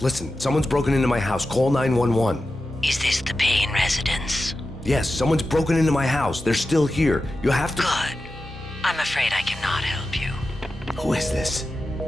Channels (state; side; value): normal; both; correlation 0.92